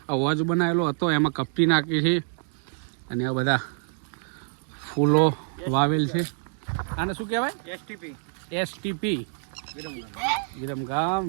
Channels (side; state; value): left; silent; 58 dB below the other